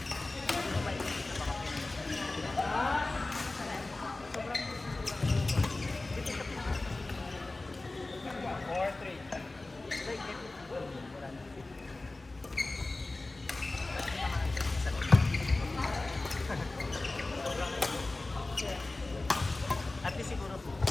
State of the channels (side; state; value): right; quieter; 3.1 dB